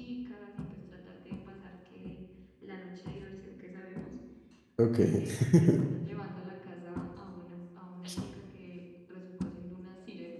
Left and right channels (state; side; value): identical; both; correlation 1.00